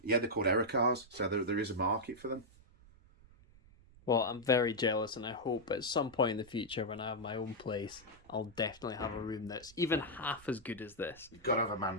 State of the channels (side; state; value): right; noise; rumble, 25 dB below the sound